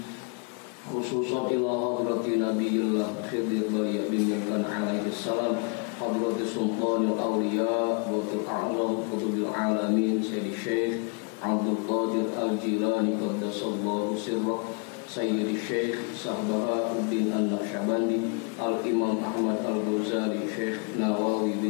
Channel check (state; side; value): quieter; right; 34.4 dB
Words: Khususan ila hadrati nabiyillah Khidir Baliya bin Yakan alaihi salam, hadrati sultanil awliya Bautul a'zam Qutbil alamin Sayyidi Syekh Abdul Qadir Al-Jilani qaddasallahu sirrah, Sayyidi Syekh Sahbahauddin An-Naqsyabandi, Al-Imam Ahmad Al-Ghazali, Syekh Nawawi